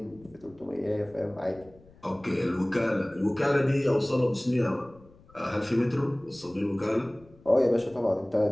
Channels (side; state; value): left; noise; rumble, 25 dB below the sound